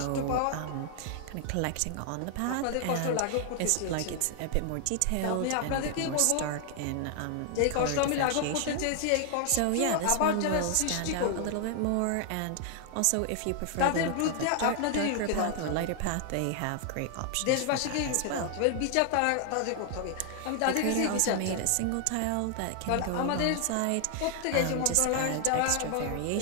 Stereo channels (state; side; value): different; both; correlation 0.00